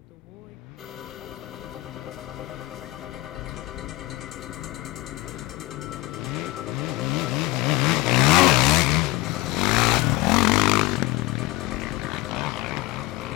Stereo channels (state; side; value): quieter; right; 20.7 dB